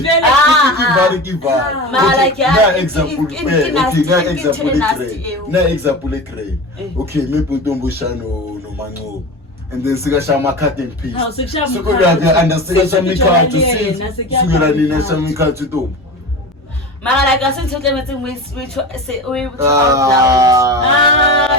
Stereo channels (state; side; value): normal; both; correlation 0.29